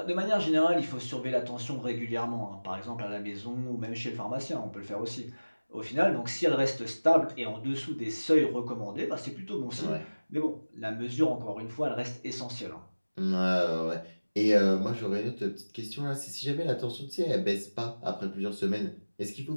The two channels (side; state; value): both; inverted; correlation -1.00